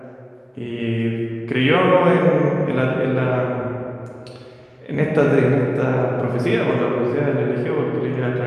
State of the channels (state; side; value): identical; both; correlation 1.00